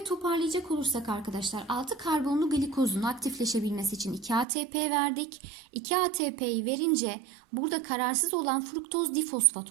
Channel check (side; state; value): left; drops out; at 4.5 s